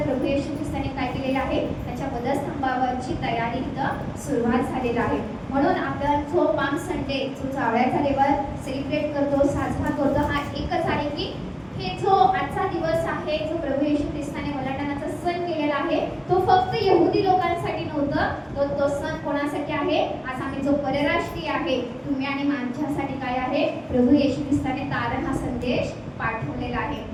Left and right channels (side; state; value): both; identical; correlation 1.00